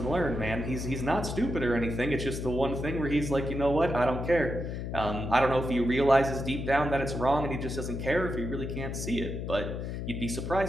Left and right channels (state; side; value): noise; left; hum, 5 dB below the sound